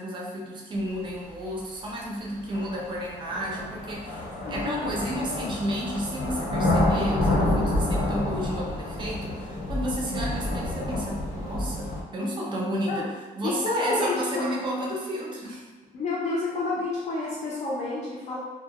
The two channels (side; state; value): both; normal; correlation 0.58